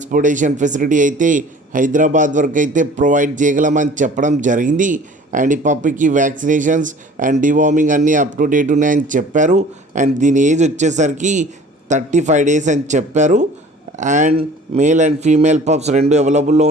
ఫెసిలిటీ అయితే హైదరాబాద్ వరకు అయితే ప్రొవైడ్ చేయగలమని చెప్పడం జరిగింది. అండ్ ఈ పప్పీకి వ్యాక్సినేషన్స్ అండ్ డివార్మింగ్ అన్నీ అప్ టు డేట్ ఉన్నాయని చెప్పారు. అండ్ దీని ఏజ్ వచ్చేసరికి 35 days అని చెప్పారు. And male and female pups రెండు అవైలబుల్లో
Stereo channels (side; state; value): both; normal; correlation 0.47